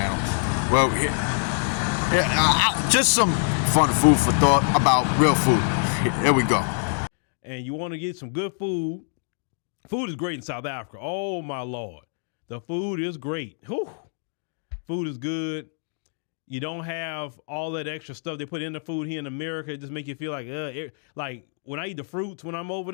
Well, just some fun food for thought about real food. Here we go. And you want to get some good food. Food is great in South Africa. Oh my Lord, the food is great. Whew. Food is good. You don't have all that extra stuff they put in the food here in America. It just make you feel like when I eat the fruits when I'm over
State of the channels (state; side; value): silent; right; digital silence